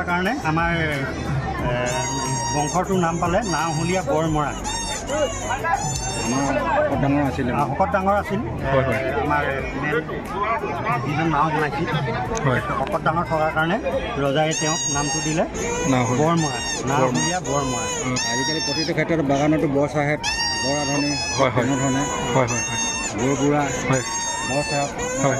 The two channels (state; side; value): identical; both; correlation 1.00